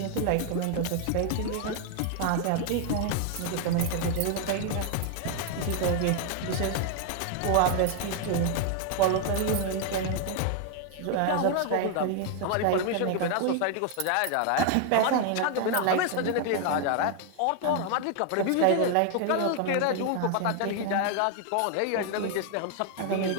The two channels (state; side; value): different; both; correlation 0.00